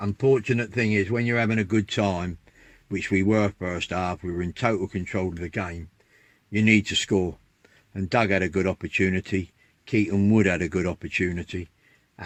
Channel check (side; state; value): both; identical; correlation 1.00